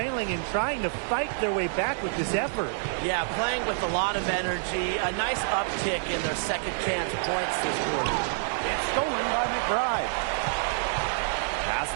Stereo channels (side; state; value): left; silent; 60 dB below the other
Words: and trying to fight their way back with this effort. Yeah, playing with a lot of energy. A nice uptick in their second chance points this quarter. It's stolen by McBride. Pass